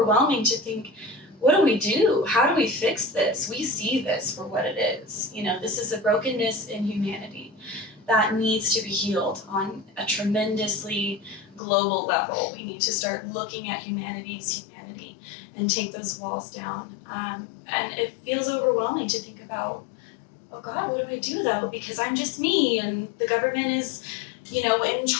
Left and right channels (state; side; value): drops out; right; at 11.6 s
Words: to think, what do we do? How do we fix this? We see this for what it is. This is a brokenness in humanity that needs to be healed on a tremendously global level. We need to start looking at humanity's humanity and take those walls down. And it feels overwhelming to think about, oh God, what do I do though? Because I'm just me and the government is, in